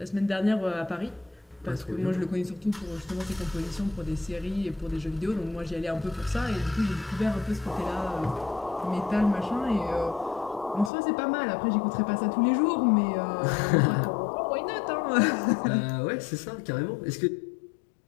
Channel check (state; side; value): drops out; right; at 10.9 s